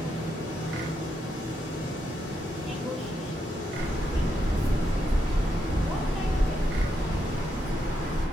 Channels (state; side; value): normal; both; correlation 0.81